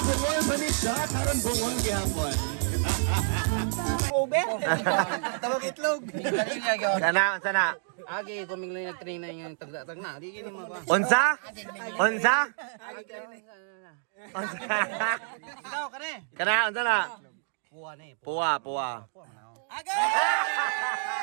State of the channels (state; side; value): silent; left; digital silence